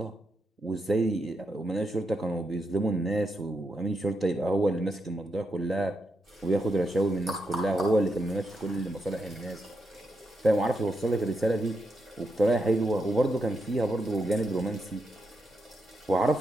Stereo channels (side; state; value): both; normal; correlation 0.83